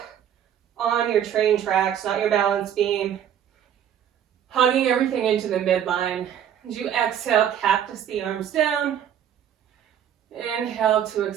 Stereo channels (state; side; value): quieter; left; 9.5 dB